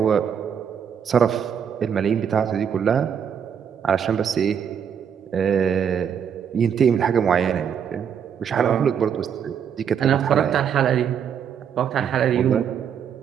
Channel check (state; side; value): quieter; left; 7.9 dB